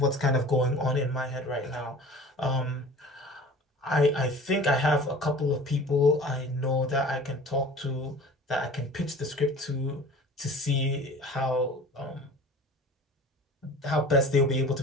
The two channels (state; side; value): normal; both; correlation 0.42